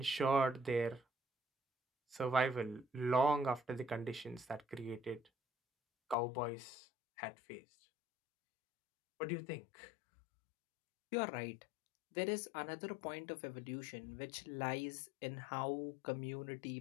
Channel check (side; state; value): right; drops out; at 6.2 s